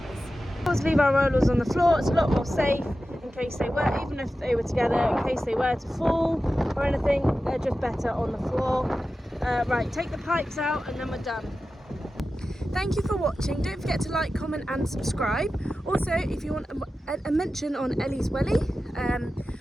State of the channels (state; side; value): normal; both; correlation 0.93